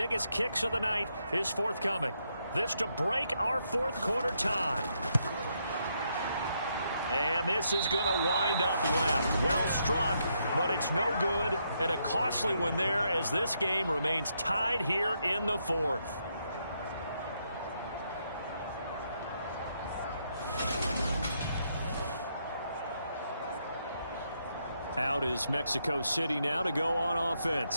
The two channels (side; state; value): both; inverted; correlation -0.78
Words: kicks of the night is forthcoming. This to break our 4th quarter tie. And this is going to wind up left. Well struck, but it's no good. And a costly one there as this game remains tied here in the 4th. Out is Mexico City now to go on